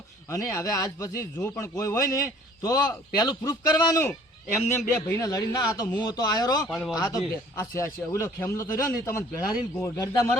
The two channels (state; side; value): normal; both; correlation 0.54